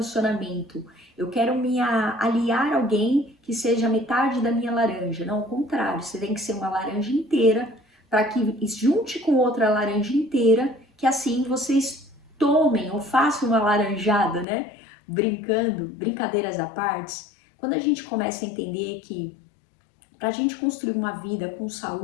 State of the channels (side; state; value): right; drops out; at 14.5 s